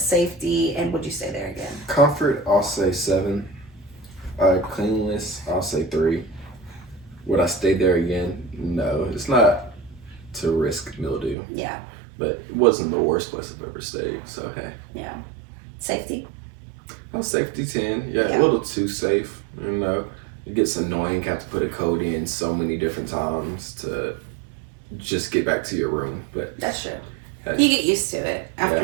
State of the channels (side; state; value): left; drops out; at 11.4 s